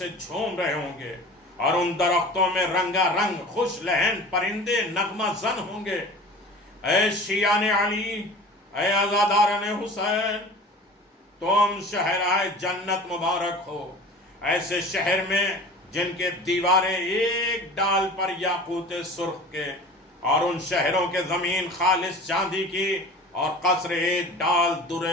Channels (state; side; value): normal; both; correlation 0.40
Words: جھوم رہے ہوں گے، اور ان درختوں میں رنگا رنگ خوش لہن پرندے نغمہ زن ہوں گے۔ اے شیعان علی، اے عزاداران حسین، تم شہرائے جنت مبارک ہو، ایسے شہر میں جن کے دیواریں ایک ڈال پر یاقوت سرخ کے، اور ان شہروں کے زمین خالص چاندی کی، اور قصر ایک ڈال